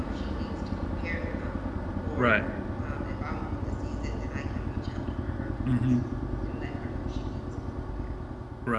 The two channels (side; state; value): both; identical; correlation 1.00